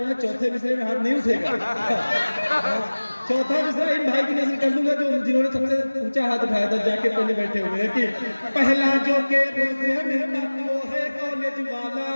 चौथे मिसरे में हाथ नहीं उठेगा। चौथा मिसरा इन भाई की नजर कर दूंगा जो जिन्होंने सबसे ऊंचा हाथ उठाया था, जाके पहले बैठे हुए हैं कि पहला जो के रोज है मिलता वो है कॉलेज वाला।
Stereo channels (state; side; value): inverted; both; correlation -1.00